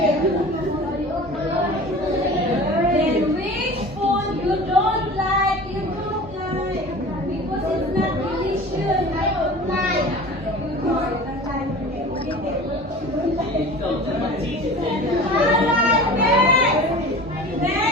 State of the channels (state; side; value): normal; both; correlation 0.38